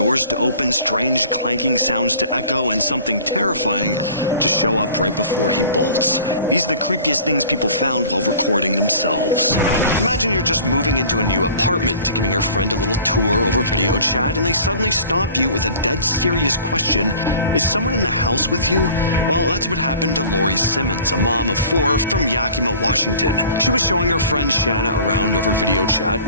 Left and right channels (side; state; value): both; inverted; correlation -0.46